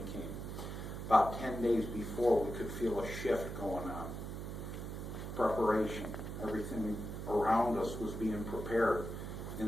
came. About 10 days before, we could feel a shift going on. Preparation, everything around us was being prepared.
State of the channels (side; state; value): right; noise; hum, 6 dB below the sound